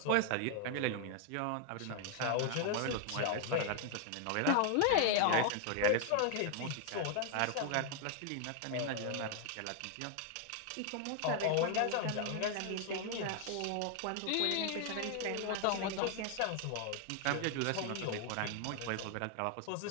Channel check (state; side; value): different; both; correlation 0.00